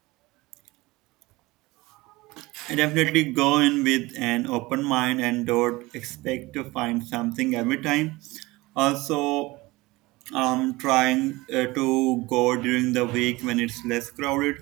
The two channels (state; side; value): quieter; left; 21.3 dB